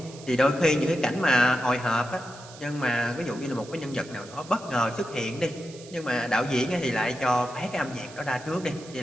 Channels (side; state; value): right; noise; hiss, 19 dB below the sound